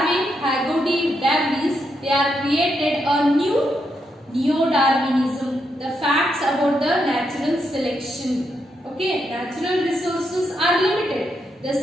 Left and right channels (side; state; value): both; normal; correlation 0.81